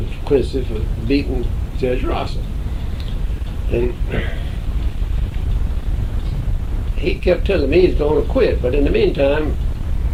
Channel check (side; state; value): both; identical; correlation 1.00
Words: Quincy for beating Judge Rosser. And he kept telling me he's going to quit. But in the meantime,